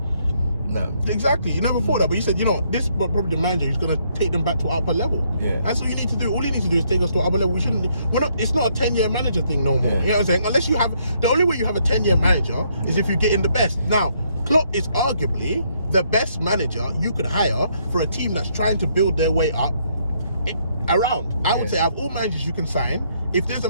No. Exactly. You never thought that, but you said, you know, this is probably the manager who's going to take them back to upper level. Yeah. That's all you need to do. All you need to do is take us to upper level. It's not a 10-year manager thing no more. Yeah. You know what I'm saying? Unless you have, the only way you have a 10-year manager is if you get in the best. Now, Klopp is arguably the best manager you could hire for a team that's trying to build their way up around. I would say out of all managers you can sign, if there's a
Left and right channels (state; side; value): inverted; both; correlation -0.71